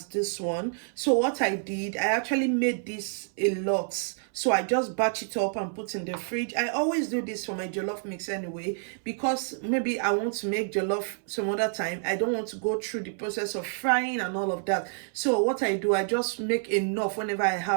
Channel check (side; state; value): left; silent; 59 dB below the other